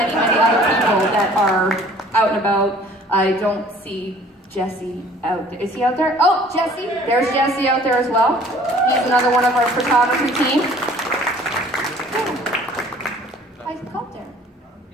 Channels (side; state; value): both; normal; correlation 0.53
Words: people that are out and about. I don't see Jesse out there. Is he out there? Oh, Jesse. There's Jesse out there as well. He's another one of our photography team. I called there.